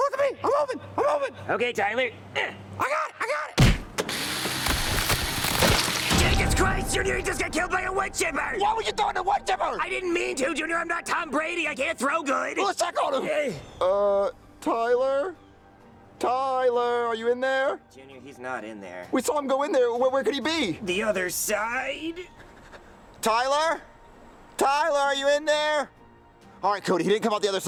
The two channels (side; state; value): both; identical; correlation 1.00